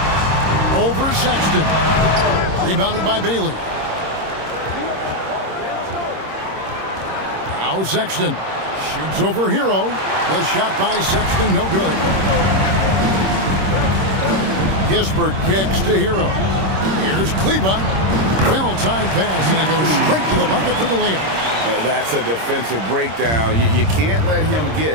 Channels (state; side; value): late; left; 26 ms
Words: Over Sexton. Rebounded by Bailey. Now Sexton shoots over Hero. The shot by Sexton, no good. Kispert kicks to Hero. Here's Kleba. Well-timed pass, and it goes straight to the bucket for the layup. That's a defensive breakdown. You can't let him